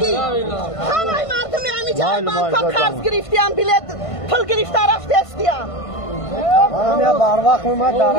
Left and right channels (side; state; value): right; late; 1.5 ms